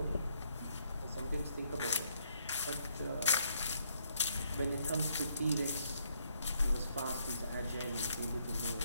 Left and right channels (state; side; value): inverted; both; correlation -0.71